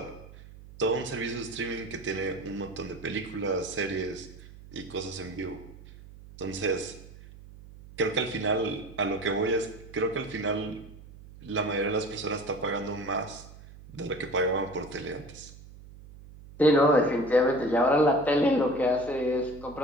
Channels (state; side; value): noise; right; hum, 18 dB below the sound